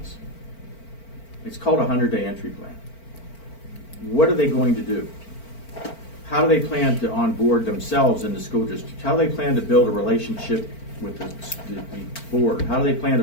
It's called a 100-day entry plan. What are they going to do? How do they plan to onboard themselves in the school district? How do they plan to build a relationship with the board? How do they plan to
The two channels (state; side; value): late; right; 4.4 ms